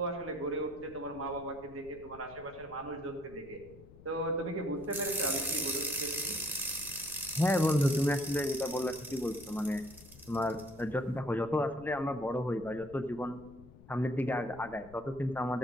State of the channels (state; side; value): noise; left; rumble, 20 dB below the sound